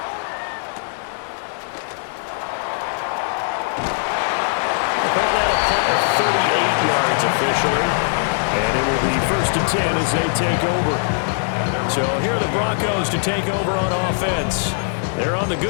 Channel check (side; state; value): right; silent; digital silence